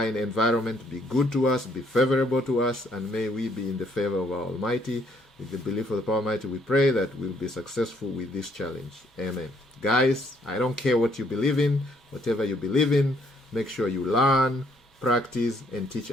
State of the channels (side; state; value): both; normal; correlation 0.68